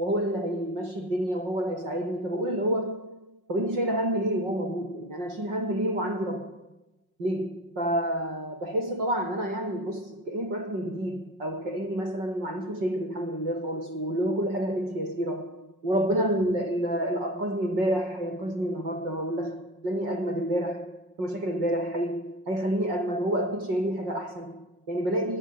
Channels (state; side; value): late; left; 5.5 ms